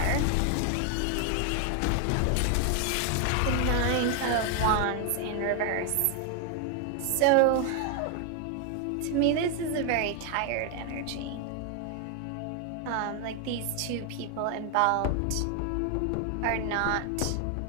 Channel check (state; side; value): different; both; correlation 0.00